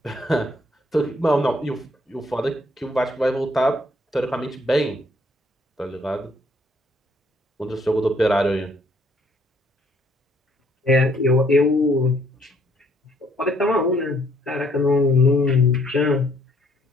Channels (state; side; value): normal; both; correlation 0.66